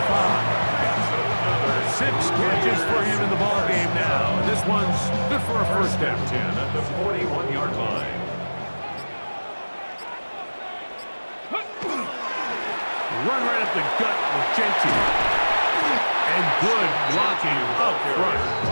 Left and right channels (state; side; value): inverted; both; correlation -1.00